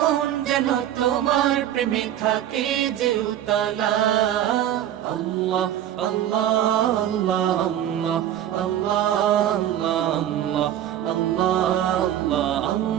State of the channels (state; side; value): quieter; left; 11.3 dB